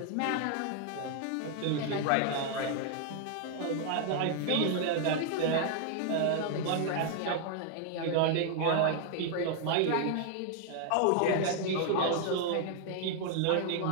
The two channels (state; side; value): different; both; correlation 0.00